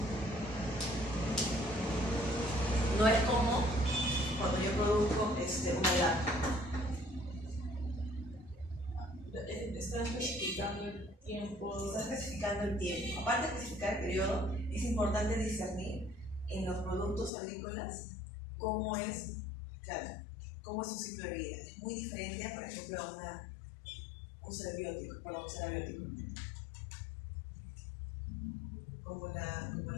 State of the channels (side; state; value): right; drops out; at 17.3 s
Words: No es como cuando yo produzco una lata. Está especificando el tiempo. Está especificando especificando el tiempo. Aparte de especificar el periodo, es importante discernir en los productos agrícolas cómo es, claro, cómo es su ciclo de vida. Es muy diferente, por ejemplo, a un ser biótico, como los cementos,